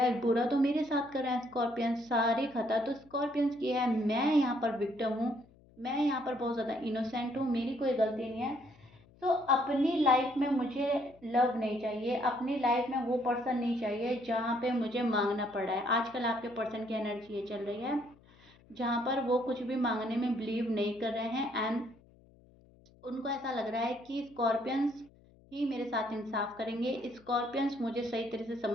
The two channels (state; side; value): noise; left; hum, 27 dB below the sound